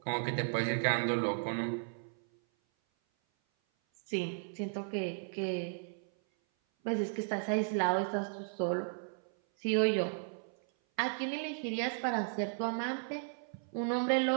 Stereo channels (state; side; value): silent; left; 54 dB below the other